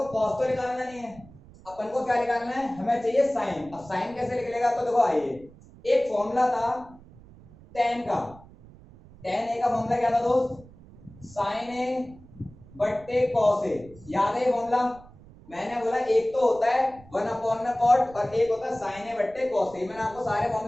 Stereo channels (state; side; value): noise; right; rumble, 22 dB below the sound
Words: cos तो निकालना नहीं है, अपन को क्या निकालना है, हमें चाहिए sin। अब sin कैसे निकलेगा, तो देखो आइए, एक फॉर्मूला था tan का, tan a का फॉर्मूला क्या था दोस्त, sin a बट्टे cos a। याद है ये फॉर्मूला? मैंने बोला एक तो होता है 1 में cot और एक होता है sin a बट्टे cos a। मैंने आपको सारे